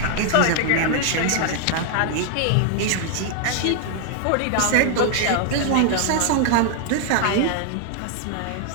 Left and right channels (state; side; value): different; both; correlation 0.00